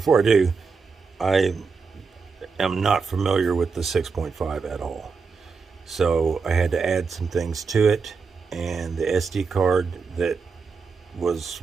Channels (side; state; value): left; quieter; 5.0 dB